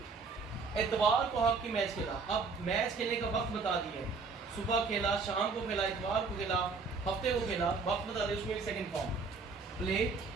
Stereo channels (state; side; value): quieter; left; 4.5 dB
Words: इतवार को हॉकी मैच खेला। अब मैच खेलने का वक्त बता दिया है, सुबह खेला, शाम को खेला, इतवार को खेला, हफ्ते को खेला, वक्त बता दिया, उसमें भी second form. Play